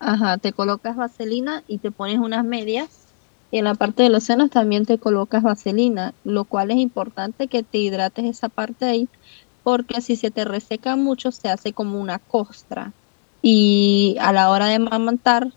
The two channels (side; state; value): right; silent; 67 dB below the other